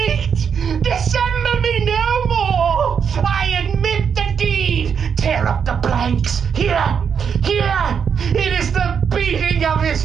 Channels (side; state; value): left; quieter; 7.0 dB